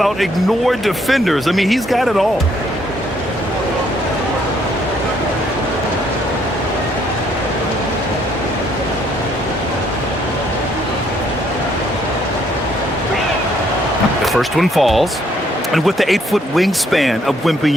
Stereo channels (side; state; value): both; normal; correlation 0.68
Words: ignore defenders. I mean, he's got it all. First one falls. And with the 8-foot wingspan of